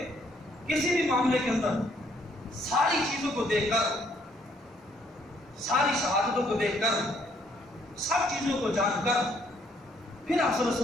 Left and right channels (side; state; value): both; normal; correlation 0.67